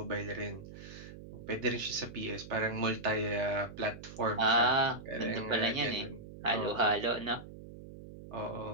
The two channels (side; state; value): right; noise; hum, 14 dB below the sound